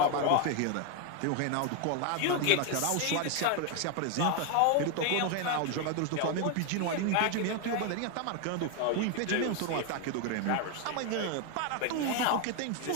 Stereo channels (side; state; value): both; different; correlation 0.01